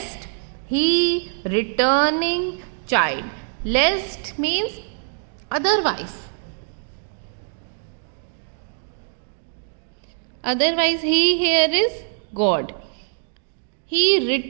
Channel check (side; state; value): left; silent; digital silence